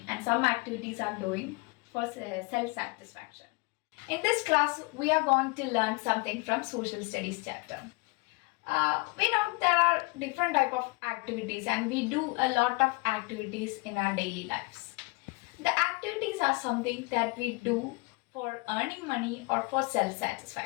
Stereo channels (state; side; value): quieter; right; 26.9 dB